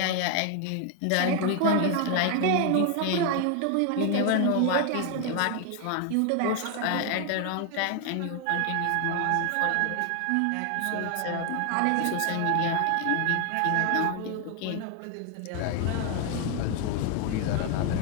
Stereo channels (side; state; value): both; different; correlation 0.00